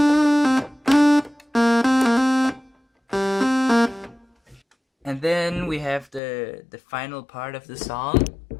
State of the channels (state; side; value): drops out; right; at 6.2 s